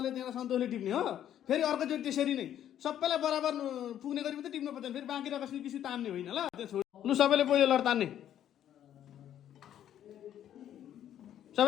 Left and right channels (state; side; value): quieter; right; 10.8 dB